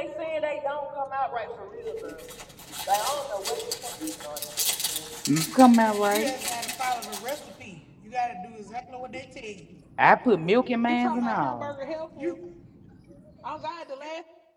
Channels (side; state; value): both; identical; correlation 1.00